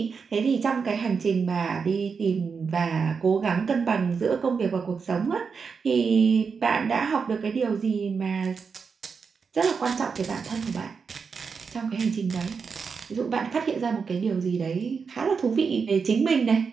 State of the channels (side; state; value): left; quieter; 5.6 dB